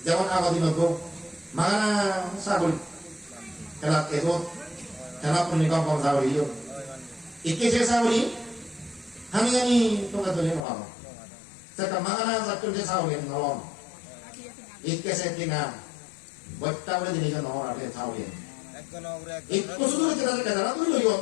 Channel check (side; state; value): right; drops out; at 10.7 s